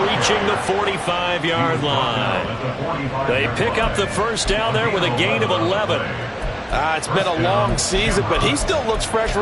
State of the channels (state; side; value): identical; both; correlation 1.00